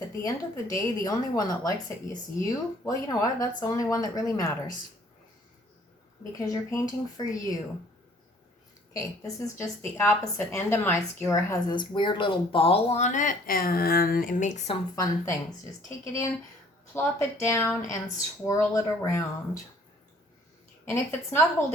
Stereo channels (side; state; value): both; normal; correlation 0.57